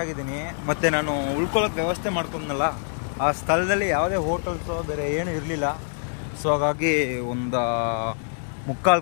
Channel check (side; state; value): right; silent; digital silence